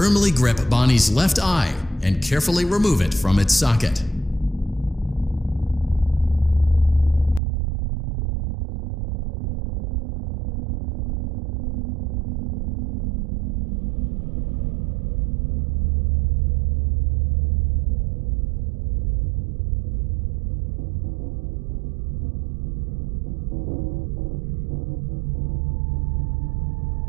grip Bonnie's left eye and carefully remove it from its socket.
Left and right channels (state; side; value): drops out; left; at 7.4 s